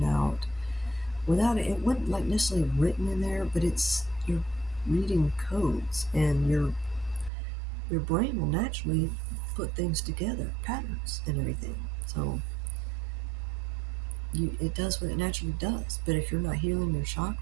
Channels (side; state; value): left; drops out; at 7.3 s